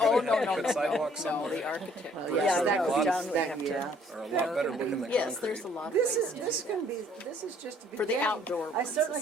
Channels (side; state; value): both; normal; correlation 0.61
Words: no, Put sidewalks no, somewhere. the architect. Well, Bricks yeah, are that a goes lot- down, we have to. Are a lot better looking than Yes, concrete. there's a lot of This ways is to this do can be this is just a For the beginning. outdoor I ones certainly